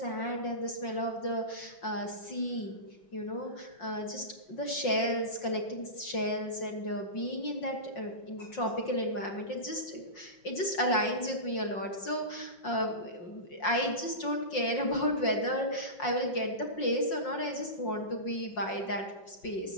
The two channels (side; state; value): right; late; 5.6 ms